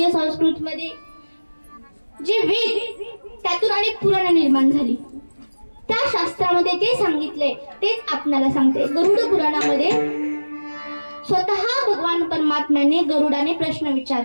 संस्कृतीमध्ये जे वेद त्यातून आणि पुराण निर्माण झाली, त्या शास्त्रामध्ये जे सांगितलंय तेच आपल्याला सांगते. गरुड पुराणामध्ये स्वतः भगवान परमात्म्याने गरुडाने प्रश्न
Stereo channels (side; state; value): both; inverted; correlation -1.00